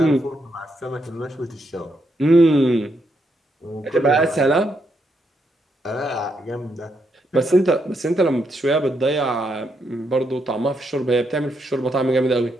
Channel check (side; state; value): both; normal; correlation 0.79